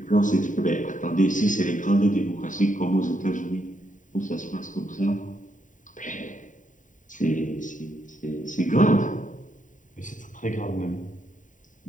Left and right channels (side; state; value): right; late; 0.37 ms